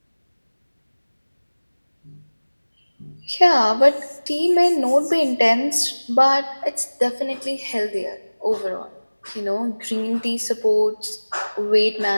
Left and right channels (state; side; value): inverted; both; correlation -1.00